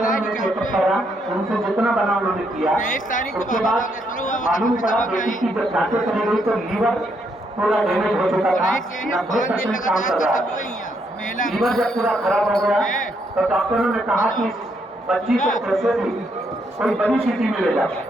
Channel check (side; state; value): both; normal; correlation 0.75